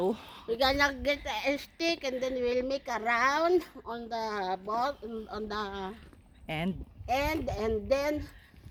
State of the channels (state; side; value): identical; both; correlation 1.00